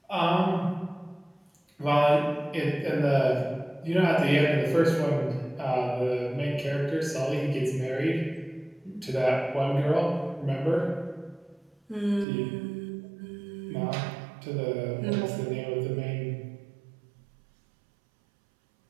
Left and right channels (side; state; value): left; drops out; at 12.2 s